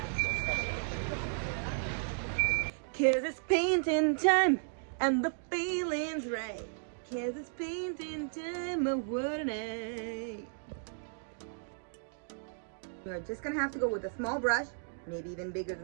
'Cause it's painting time and the feeling's right. 'Cause it's painting time, oh what a night. You're just gonna have to go with a small brush, maybe even bigger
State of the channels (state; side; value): silent; left; digital silence